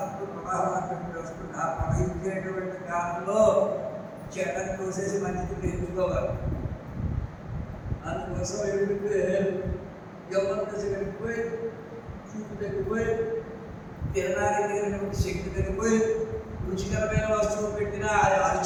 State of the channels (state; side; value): identical; both; correlation 1.00